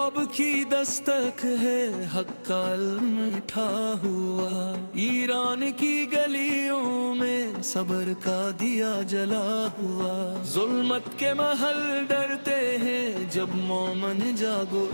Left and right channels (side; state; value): both; inverted; correlation -1.00